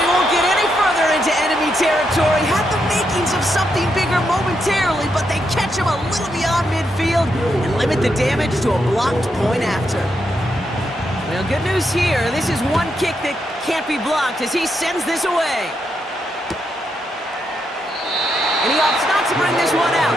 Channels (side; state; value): both; normal; correlation 0.81